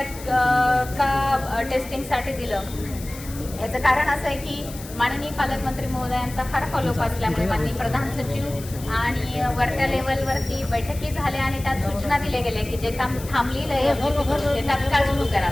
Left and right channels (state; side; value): noise; left; hiss, 15 dB below the sound